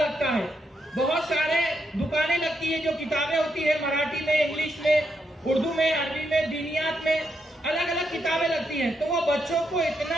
है, बहुत सारे दुकानें लगती है, जो किताबें होती है मराठी में, इंग्लिश में, उर्दू में, अरबी में, दीनियात में, अलग अलग किताबें लगती हैं। तो वो बच्चों को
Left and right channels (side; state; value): both; normal; correlation 0.80